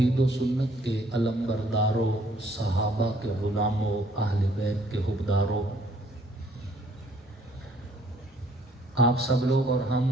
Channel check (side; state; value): both; normal; correlation 0.63